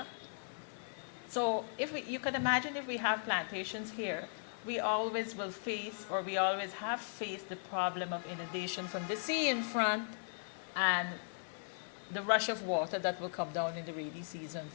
So you can imagine if we have plantations here, we always will face, or we always have faced, the problem of inundation from the sea in front and the rush of water that will come down in the rainy season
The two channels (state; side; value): silent; right; digital silence